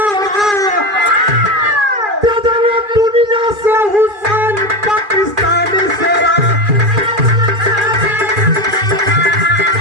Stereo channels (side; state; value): left; late; 2.4 ms